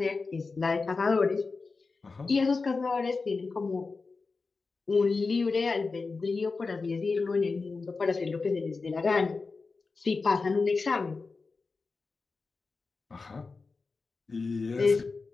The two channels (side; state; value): right; quieter; 4.2 dB